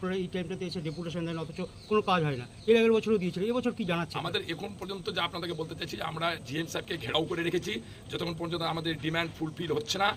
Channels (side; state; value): both; identical; correlation 1.00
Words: এই টাইমটাতে এসে ডেপুটেশন দেন, অথচ কোনো কাজ হয় না। এর আগের বছরও দিয়েছিল, এবছর কি জানাচ্ছে? আমাদের এখন পর্যন্ত যা আপনাদেরকে বলতে চাইছি, আমরা জিএম সাহেবকে ঘেরাও করে রেখেছি যতক্ষণ পর্যন্ত আমাদের ডিমান্ড ফুলফিল হচ্ছে না।